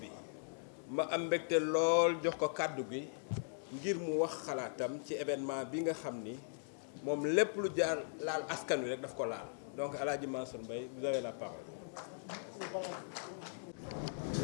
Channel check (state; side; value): silent; right; digital silence